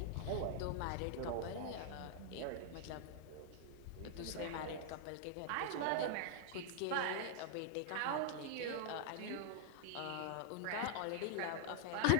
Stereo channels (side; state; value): both; different; correlation 0.00